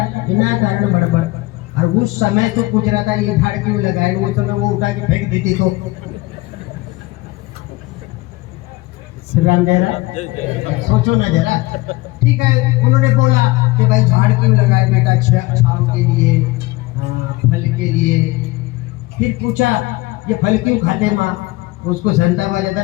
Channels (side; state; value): right; quieter; 20.6 dB